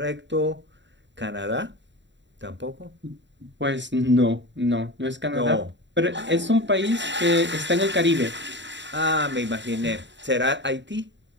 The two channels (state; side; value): late; left; 0.53 ms